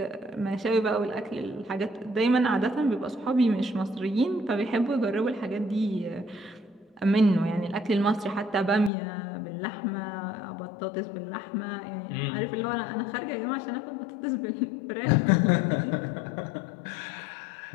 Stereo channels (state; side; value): drops out; right; at 8.9 s